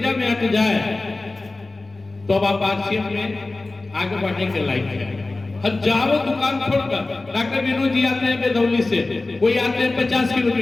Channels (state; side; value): quieter; right; 3.2 dB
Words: में आके जाए तो अब आप आरसीएम में आगे बढ़ने के लायक है। हजारों दुकान छोड़कर डॉक्टर विनोद जी आते हैं बेदौली से, कोई आते हैं 50